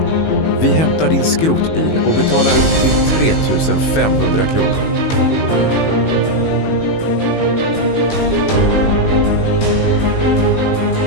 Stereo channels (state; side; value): late; right; 19 ms